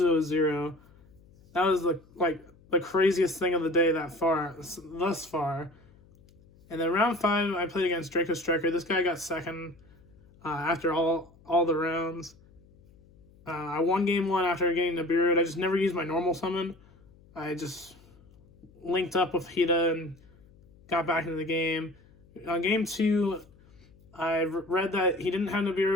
was 0. That was the craziest thing of the day thus far. And then round 5, I played against Draco Striker. This guy got second after all the rounds. I won game 1 after getting Nibiru. I just never used my normal summon. I just linked up with Hida and got back into the game. On game 2, I read that he didn't have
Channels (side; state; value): left; noise; hum, 27 dB below the sound